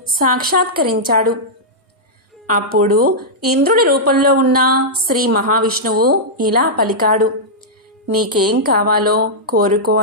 సాక్షాత్కరించాడు. అప్పుడు ఇంద్రుడి రూపంలో ఉన్న శ్రీ మహావిష్ణువు ఇలా పలికాడు: నీకేం కావాలో కోరుకో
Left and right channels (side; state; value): both; normal; correlation -0.09